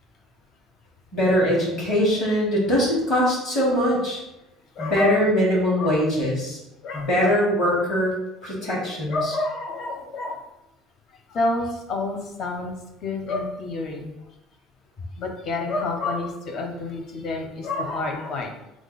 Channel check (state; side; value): normal; both; correlation 0.47